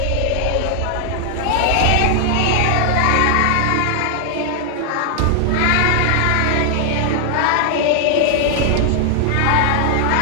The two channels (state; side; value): different; both; correlation 0.00